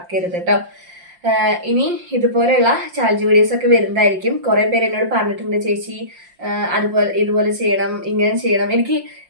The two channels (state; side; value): late; left; 5.7 ms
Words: കേട്ടോ. ഇനി ഇതുപോലെയുള്ള ചാലഞ്ച് വീഡിയോസ് ഒക്കെ വരുന്നതായിരിക്കും. കുറേ പേര് എന്നോട് പറഞ്ഞിട്ടുണ്ട്, ചേച്ചി ഇതുപോലെ ചെയ്യണം, ഇങ്ങനെ ചെയ്യണം. എനിക്ക്